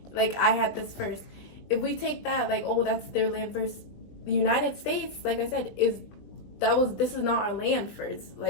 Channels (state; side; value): late; right; 20 ms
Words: Like, I had this first. If we take that, like, oh, that's their land first. The United States, like I said, this is not our land first.